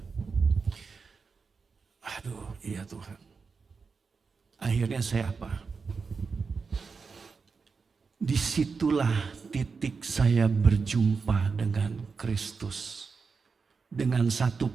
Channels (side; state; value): left; quieter; 5.0 dB